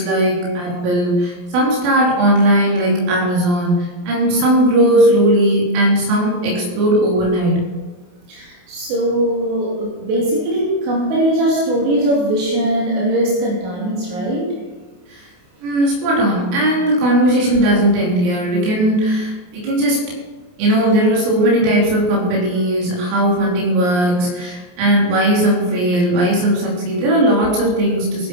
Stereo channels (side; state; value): left; late; 28 ms